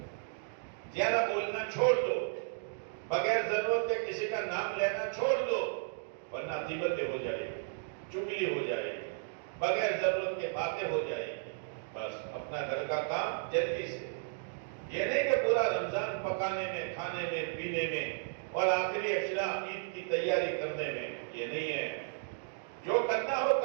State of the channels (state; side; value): silent; left; digital silence